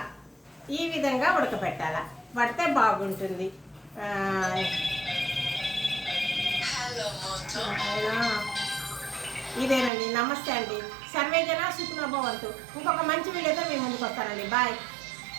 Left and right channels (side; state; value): left; drops out; at 9.9 s